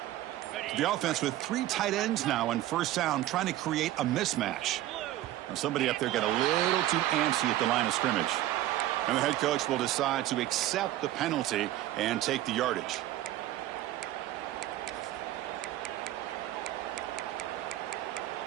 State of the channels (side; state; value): left; quieter; 14.5 dB